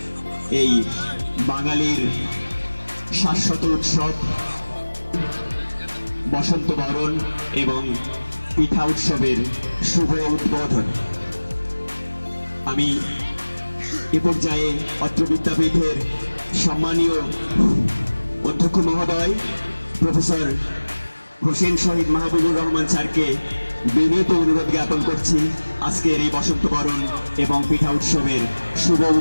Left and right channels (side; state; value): both; inverted; correlation -1.00